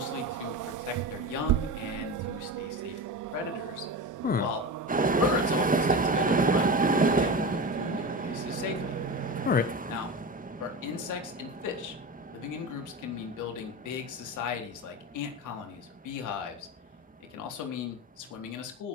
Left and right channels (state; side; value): normal; both; correlation 0.25